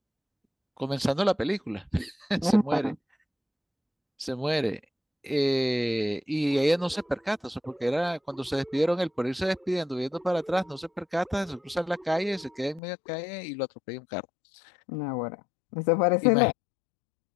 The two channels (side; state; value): right; drops out; at 12.8 s